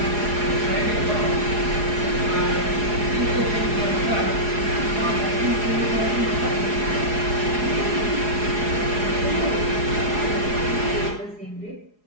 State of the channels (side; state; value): left; late; 4.8 ms